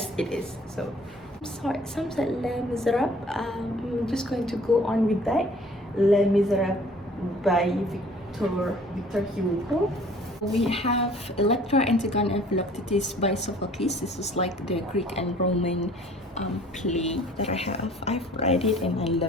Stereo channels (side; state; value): both; normal; correlation 0.53